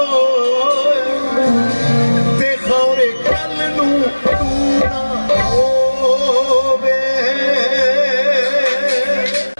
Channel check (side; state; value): both; inverted; correlation -1.00